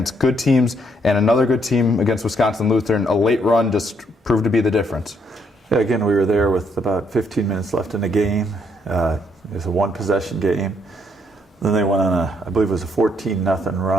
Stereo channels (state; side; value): normal; both; correlation 0.72